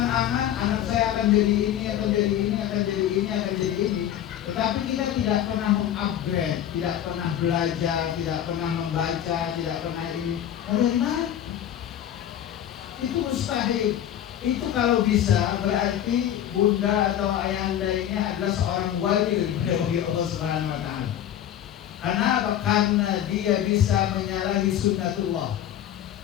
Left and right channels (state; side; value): quieter; right; 10.9 dB